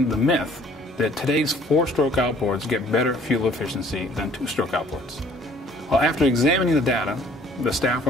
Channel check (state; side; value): normal; both; correlation 0.56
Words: the myth that today's four-stroke outboards get better fuel efficiency than two-stroke outboards. Well, after examining the data, the staff